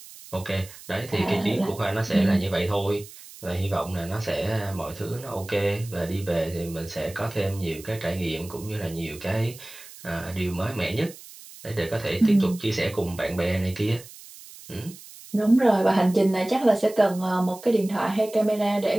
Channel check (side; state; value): right; noise; hiss, 18 dB below the sound